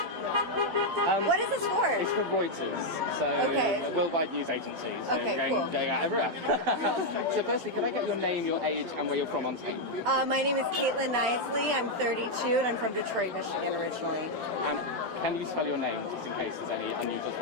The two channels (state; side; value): late; left; 12 ms